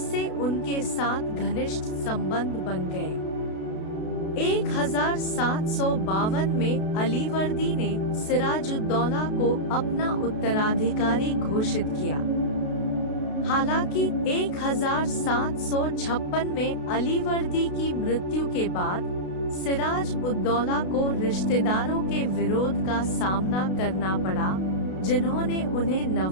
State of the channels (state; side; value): late; right; 32 ms